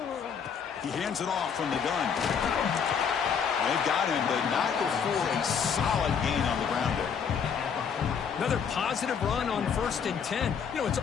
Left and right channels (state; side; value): quieter; right; 6.9 dB